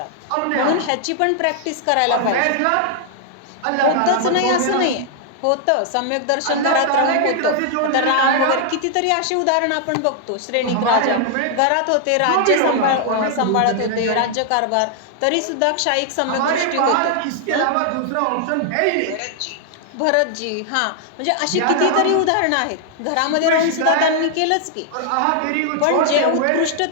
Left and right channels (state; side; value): different; both; correlation 0.00